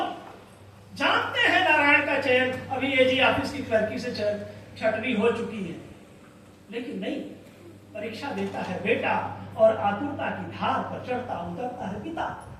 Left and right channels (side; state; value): both; identical; correlation 1.00